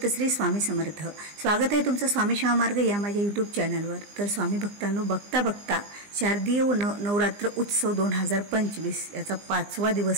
श्री स्वामी समर्थ। स्वागत आहे तुमचं स्वामी शिवा मार्ग या माझ्या यूट्यूब चॅनलवर। तर स्वामी भक्तांनो, बघता बघता शारदीय नवरात्र उत्सव 2025 याचा 5वा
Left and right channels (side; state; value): left; late; 20 ms